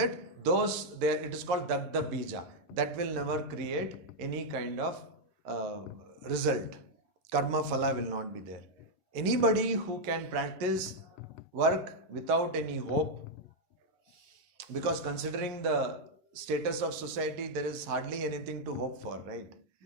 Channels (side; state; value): left; late; 11 ms